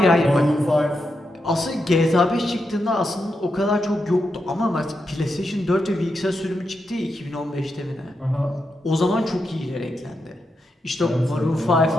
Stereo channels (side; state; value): both; normal; correlation 0.85